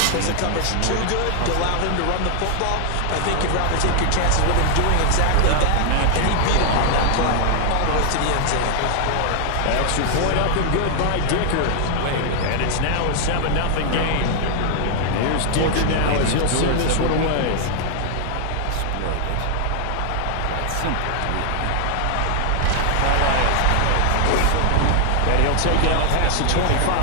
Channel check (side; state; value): both; different; correlation 0.00